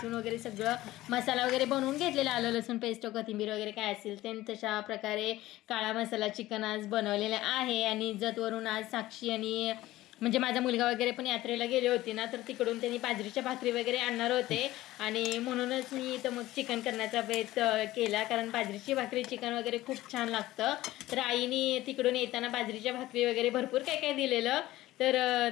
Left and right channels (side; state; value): right; quieter; 16.5 dB